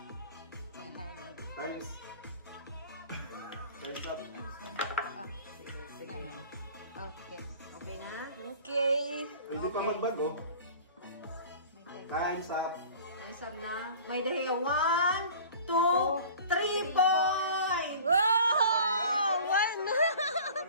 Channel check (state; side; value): inverted; both; correlation -0.44